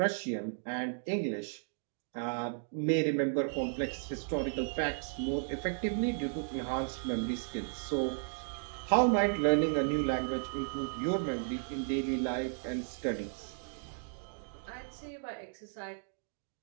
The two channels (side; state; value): left; silent; digital silence